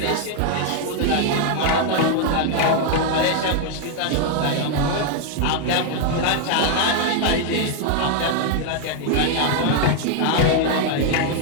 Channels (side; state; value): both; different; correlation 0.00